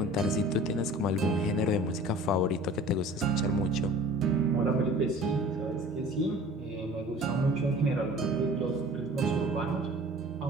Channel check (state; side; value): normal; both; correlation 0.45